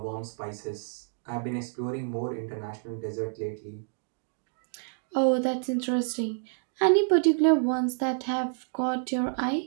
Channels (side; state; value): left; silent; digital silence